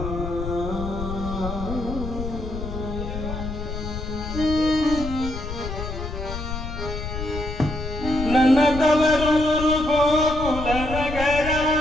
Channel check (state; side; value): noise; left; rumble, 6 dB below the sound